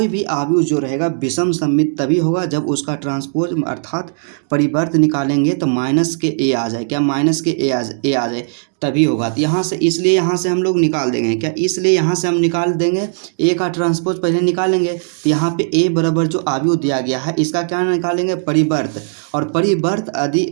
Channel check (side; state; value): left; silent; digital silence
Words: भी अवयव जो रहेगा विषम सममित तभी होगा जब उसका ट्रांसपोज अर्थात परिवर्त निकालेंगे तो माइनस के ए आ जाए। क्या माइनस के ए आ जाए तभी होगा। तो यहाँ से, इसलिए यहाँ से हम लोग निकाल देंगे। क्या इसलिए यहाँ से हम निकाल देंगे ए का ट्रांसपोज पहले निकालेंगे। तो यहाँ पे ए बराबर जो अवयव दिया गया है इसका क्या निकालेंगे? परिवर्त, और परिवर्त यदि